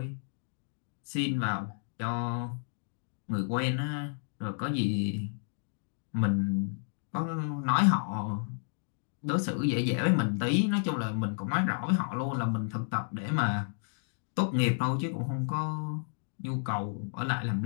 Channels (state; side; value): silent; right; digital silence